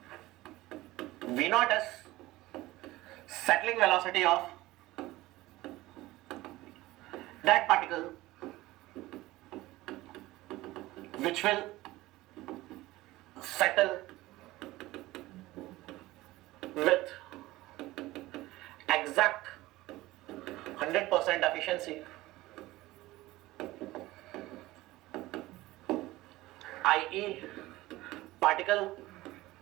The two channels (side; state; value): left; quieter; 18.2 dB